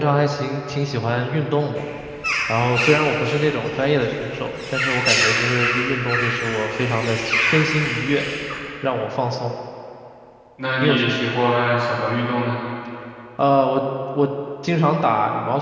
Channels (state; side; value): identical; both; correlation 1.00